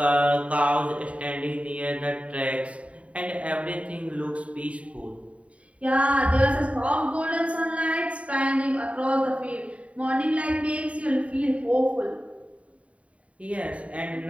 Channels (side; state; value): left; late; 0.065 ms